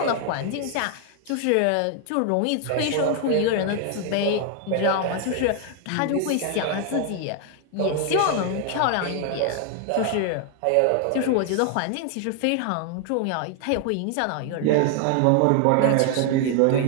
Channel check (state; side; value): different; both; correlation 0.00